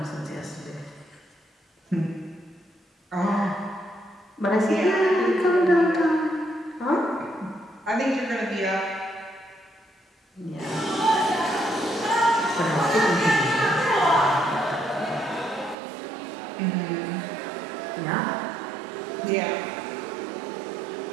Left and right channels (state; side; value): drops out; left; at 15.8 s